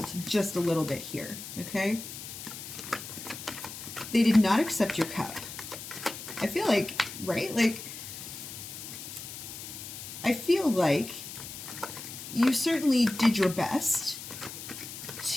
just a little bit here, okay? They did not accept your cup. I feel like, right? Like, I feel like you certainly did your best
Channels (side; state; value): left; noise; hiss, 10 dB below the sound